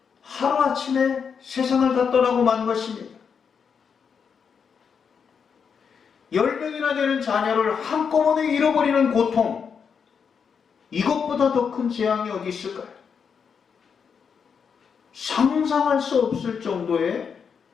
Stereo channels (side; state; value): right; quieter; 6.5 dB